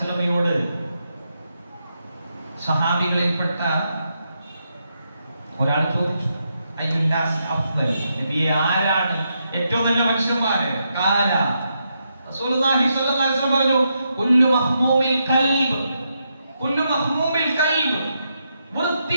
സഹാബികളിൽപ്പെട്ട ഒരാൾ ചോദിച്ചു, അയ്യുന്നാസി അഫ്ദൽ, നബിയെ ആരാണ് ഏറ്റവും നല്ല മനുഷ്യന്മാര്? ഖാല റസൂലുള്ളാഹി സ്വല്ലല്ലാഹു അലൈഹി വസല്ലം പറഞ്ഞു, കുല്ലു മഹ്മൂമിൽ ഖൽബ്, കുല്ലു മഹ്മൂമിൽ ഖൽബ്,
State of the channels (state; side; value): inverted; both; correlation -0.82